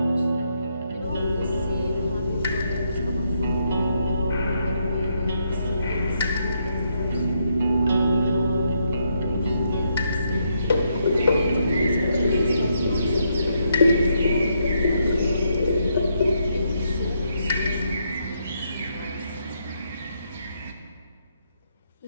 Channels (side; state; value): both; inverted; correlation -0.76